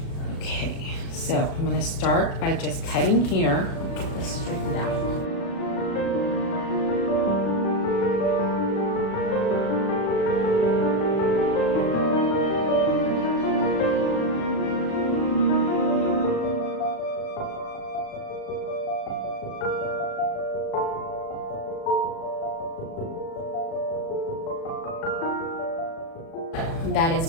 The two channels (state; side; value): late; right; 36 ms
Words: Okay, so I'm gonna start by just cutting here. Get this straightened out. that is